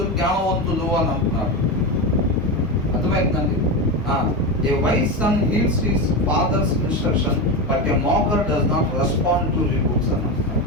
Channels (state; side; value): normal; both; correlation 0.17